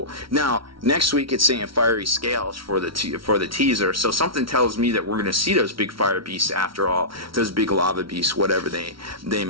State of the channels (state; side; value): late; left; 0.75 ms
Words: Now, next week it's saying fiery scales for the teaser, so something tells me that we're going to see those big fire beasts after all, those big lava beasts, whatever they